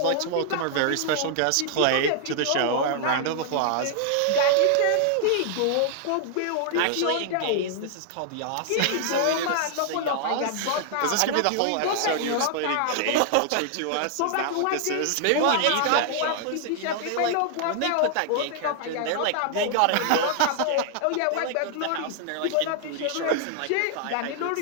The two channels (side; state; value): both; different; correlation -0.01